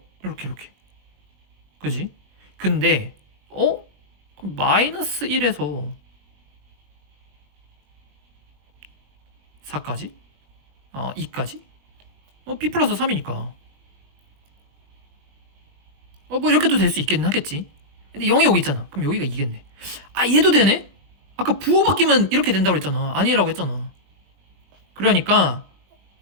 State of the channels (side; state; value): left; late; 20 ms